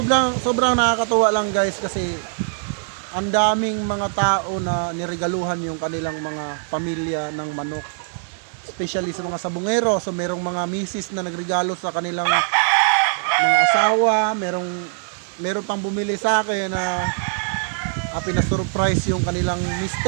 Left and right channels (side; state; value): left; silent; digital silence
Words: sobrang nakakatuwa lang guys kasi ang daming mga tao na niregaluhan yung kanilang mga pamilya ng manok. Especially sa mga sabungero. So merong mga misis na nagregalo sa kanilang mga asawa. Meron pang bumili sa akin na pinasurprise yung kanilang